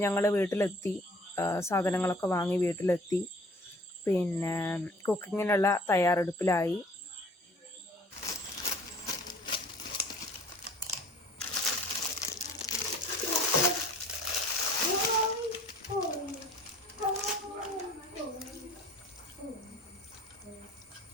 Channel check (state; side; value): normal; both; correlation 0.52